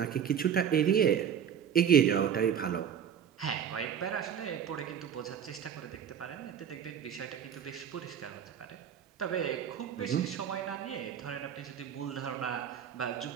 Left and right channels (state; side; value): quieter; left; 8.5 dB